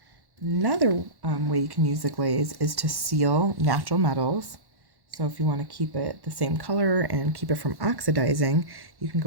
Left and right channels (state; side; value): late; left; 1.1 ms